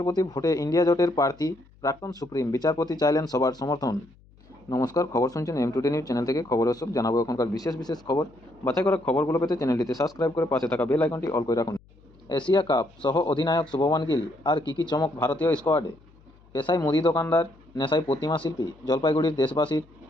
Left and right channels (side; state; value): left; noise; hum, 28 dB below the sound